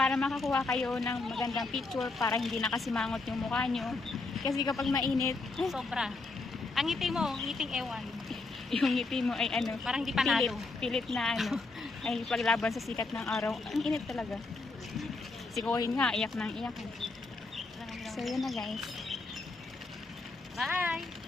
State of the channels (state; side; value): quieter; right; 3.6 dB